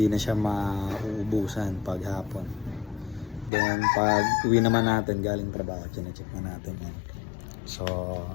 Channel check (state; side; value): drops out; right; at 3.5 s